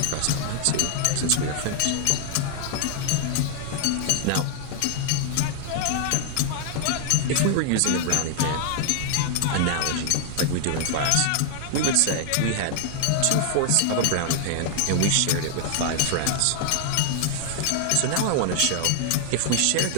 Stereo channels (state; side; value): different; both; correlation 0.00